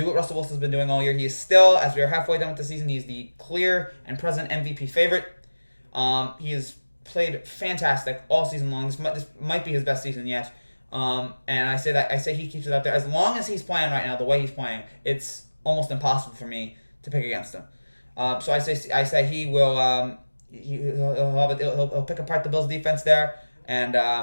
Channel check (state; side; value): inverted; both; correlation -1.00